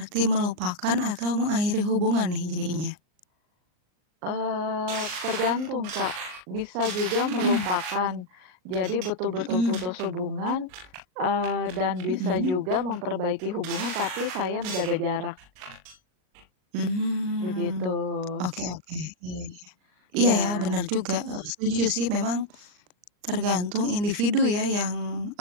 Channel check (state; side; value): late; left; 39 ms